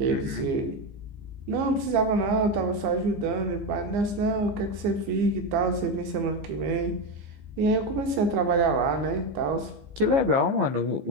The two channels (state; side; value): late; left; 15 ms